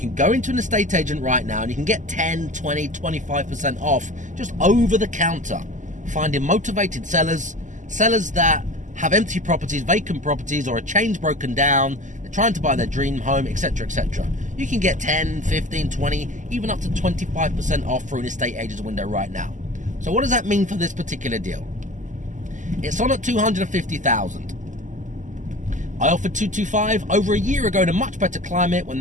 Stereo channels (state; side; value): late; left; 0.37 ms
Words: go into an estate agent right now and you can get 10, 20, 25% off just over the counter, finding motivated sellers that have empty properties, vacant properties, or a chain's broken down, they're trying to buy their dream home, etc., etc. You can get 10, 15, 20, even up to 25% off through an estate agent's window right now. So what does that mean for this particular deal? It's on at $250,000. I offered $225,000 over a year ago in a much better climate when